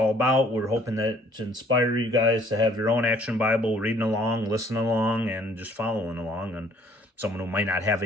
about. We're hoping that to inspire you guys to have your own Action Bible, reading along, listening along, and just following along. And someone who might not have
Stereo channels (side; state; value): both; normal; correlation 0.60